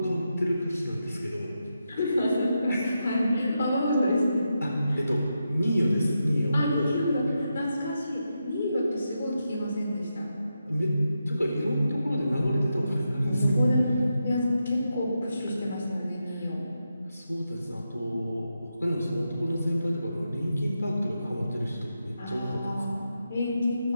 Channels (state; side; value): inverted; both; correlation -0.87